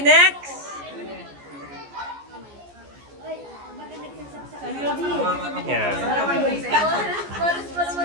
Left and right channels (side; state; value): left; late; 14 ms